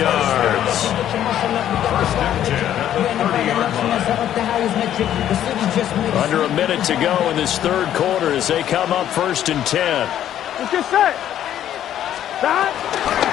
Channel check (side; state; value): right; quieter; 11.1 dB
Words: 1st and 10 at the 30-yard line. Under a minute to go in this 3rd quarter as they come up 1st and 10. Let's get set. Stop.